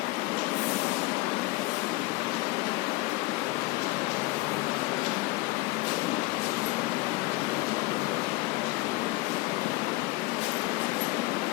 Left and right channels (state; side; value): quieter; right; 21.3 dB